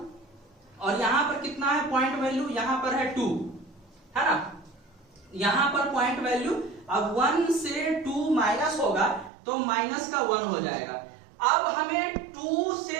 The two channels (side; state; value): left; drops out; at 9.3 s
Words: और यहां पर कितना है पॉइंट वैल्यू, यहां पर है 2, है ना। यहां पर पॉइंट वैल्यू, अब 1 से 2 माइनस होगा तो माइनस का 1 हो जाएगा। अब हमें 2